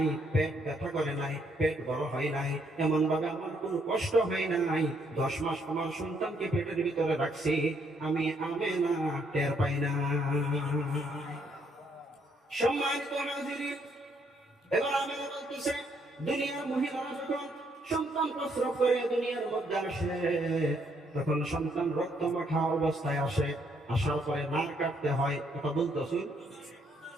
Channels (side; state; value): both; normal; correlation 0.71